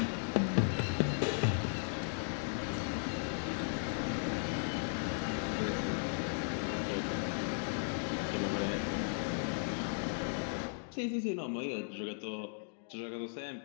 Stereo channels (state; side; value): silent; right; digital silence